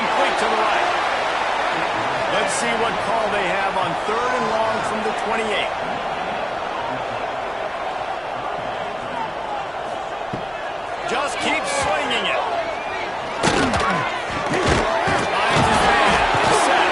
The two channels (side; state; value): left; noise; hum, 29 dB below the sound